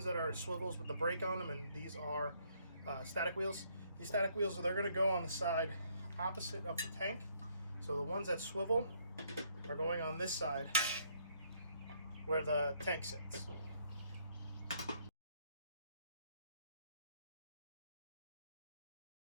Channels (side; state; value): both; inverted; correlation -0.68